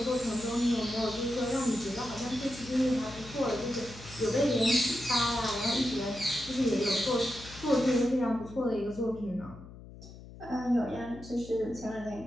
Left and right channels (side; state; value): left; noise; hum, 16 dB below the sound